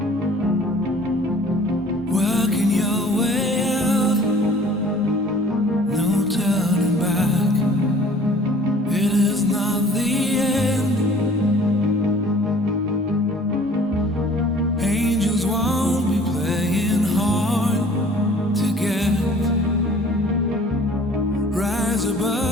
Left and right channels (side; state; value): both; normal; correlation 0.51